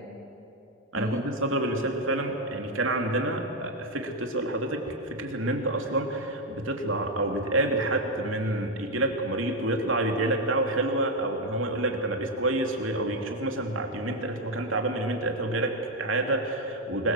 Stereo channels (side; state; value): both; normal; correlation 0.05